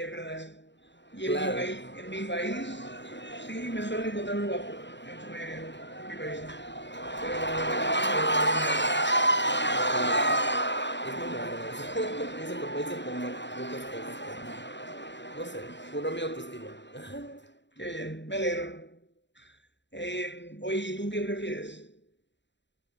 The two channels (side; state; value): right; late; 0.52 ms